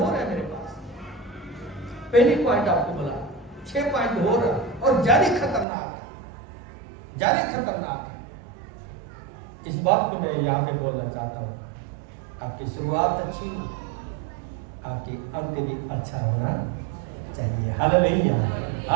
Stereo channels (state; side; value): drops out; left; at 5.7 s